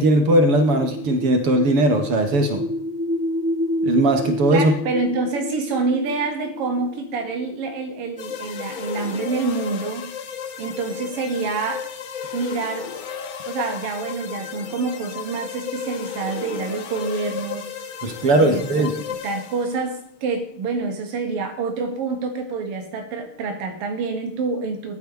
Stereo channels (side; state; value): left; late; 6.1 ms